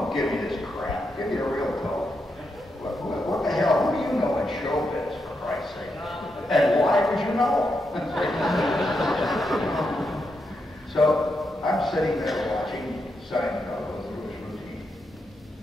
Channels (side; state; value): both; normal; correlation 0.83